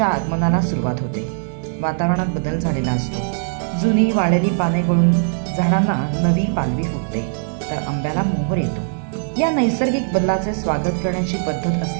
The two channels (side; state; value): left; silent; digital silence